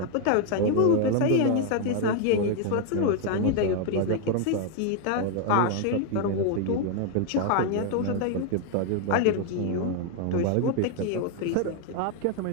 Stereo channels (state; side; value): different; both; correlation 0.00